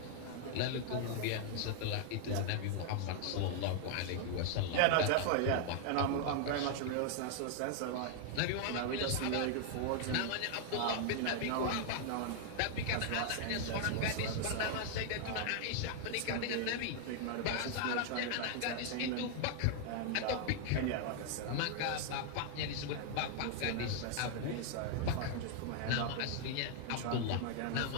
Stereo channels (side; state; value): both; different; correlation 0.00